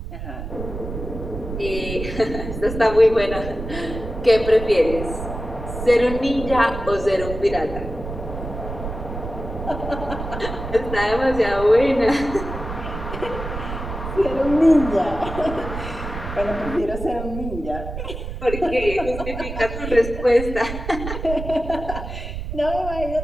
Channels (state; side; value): noise; right; rumble, 8 dB below the sound